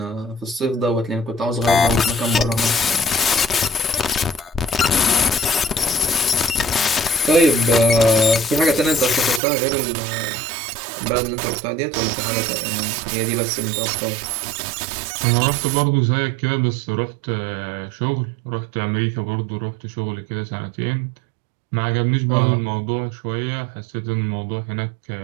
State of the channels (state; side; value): drops out; left; at 9.4 s